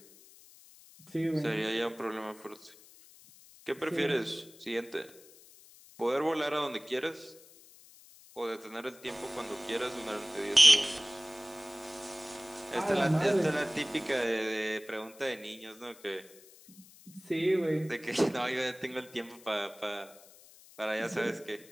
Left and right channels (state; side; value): noise; left; hiss, 23 dB below the sound